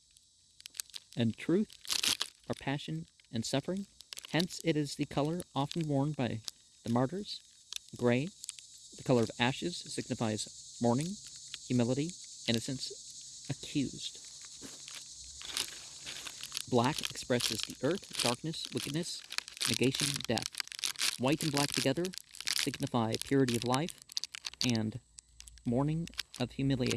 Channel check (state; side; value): identical; both; correlation 1.00